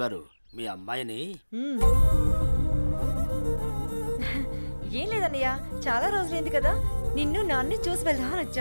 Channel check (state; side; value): inverted; both; correlation -1.00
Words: మీ అమ్మాయిని ఏం లేదన్నయ్య, చాలా రోజులైంది కదా, నిన్ను నాన్ని చూసి వెళ్దామని